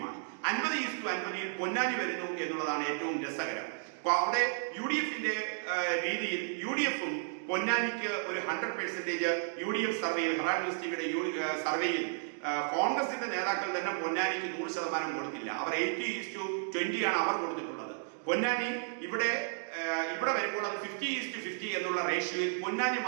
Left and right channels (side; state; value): left; silent; digital silence